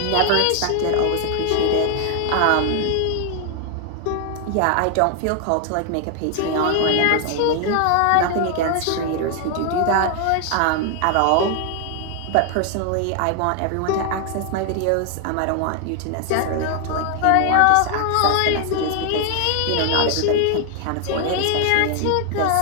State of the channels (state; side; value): different; both; correlation 0.00